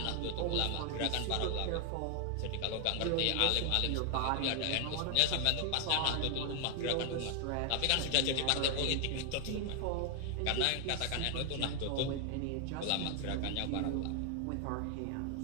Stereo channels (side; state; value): both; different; correlation 0.00